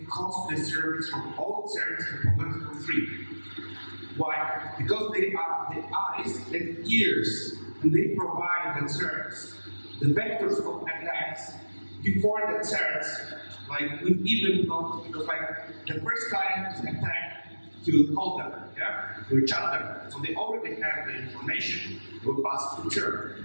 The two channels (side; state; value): both; inverted; correlation -1.00